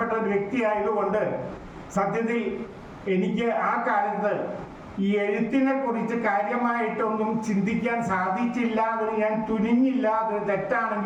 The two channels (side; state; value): both; identical; correlation 1.00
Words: ഒരു വ്യക്തിയായതുകൊണ്ട് സത്യത്തിൽ എനിക്ക് ആ കാലത്ത് ഈ എഴുത്തിനെ കുറിച്ച് കാര്യമായിട്ടൊന്നും ചിന്തിക്കാൻ സാധിച്ചില്ല. അതിന് ഞാൻ തുനിഞ്ഞില്ല. അത്